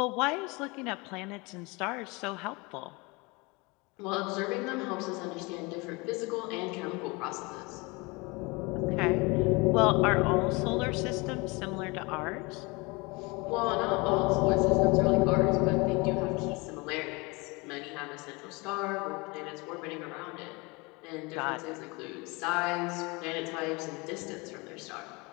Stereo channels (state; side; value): quieter; right; 26.6 dB